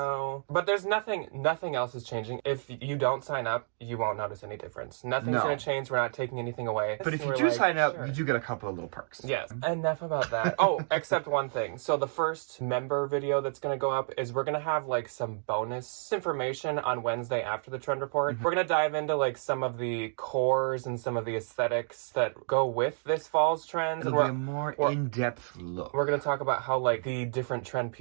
But there's nothing else is changing. If you don't sign up, you won't notice any difference. Nothing's going to change. We're not taking anything away. But if you do sign up, you do get a couple of little perks. Yes. Enough about that. Oh, except one thing. So the first member video that's going to go up is we're going to have some bonus information on Wednesday after the trend report. We're going to dive into some of the cores and some of the aesthetics that go with this fall's trends. It'll be a more in-depth look. We're going to talk about how the different trend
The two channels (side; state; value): left; silent; 58 dB below the other